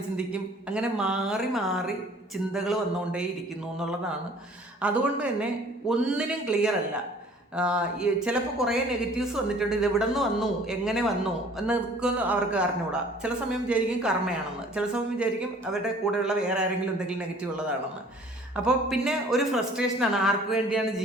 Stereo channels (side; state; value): both; normal; correlation 0.52